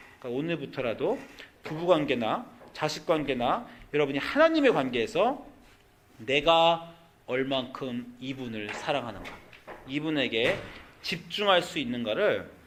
오늘부터라도 부부관계나 자식관계나 여러분이 하나님의 관계에서 내가 얼만큼 이분을 사랑하는가, 이분에게 집중할 수 있는가를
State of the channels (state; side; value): identical; both; correlation 1.00